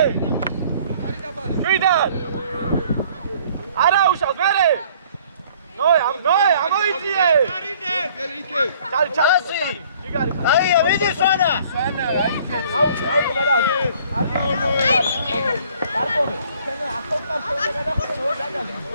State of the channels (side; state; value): both; inverted; correlation -0.56